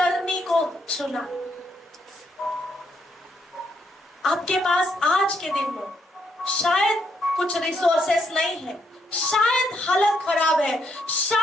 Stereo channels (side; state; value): both; normal; correlation 0.75